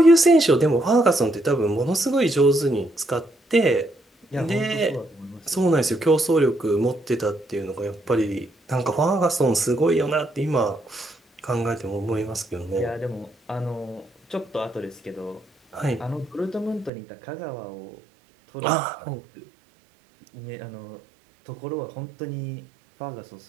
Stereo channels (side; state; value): left; drops out; at 16.9 s